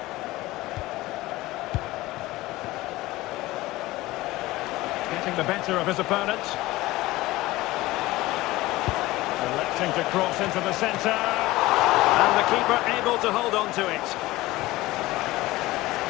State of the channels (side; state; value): right; quieter; 18.6 dB